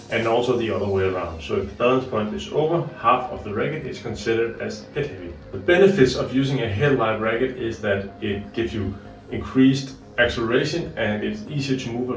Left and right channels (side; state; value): both; identical; correlation 1.00